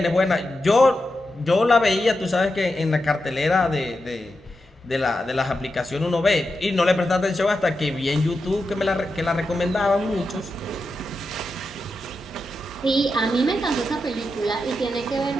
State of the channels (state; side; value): normal; both; correlation 0.88